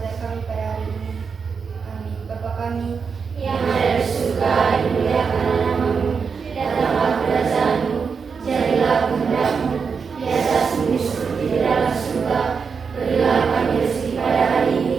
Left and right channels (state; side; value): quieter; left; 5.7 dB